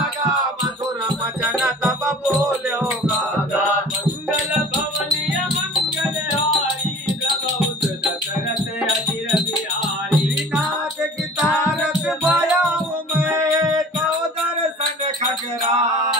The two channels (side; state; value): both; normal; correlation 0.44